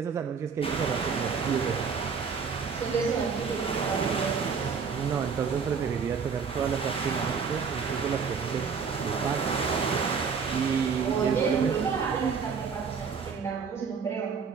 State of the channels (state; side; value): quieter; left; 5.9 dB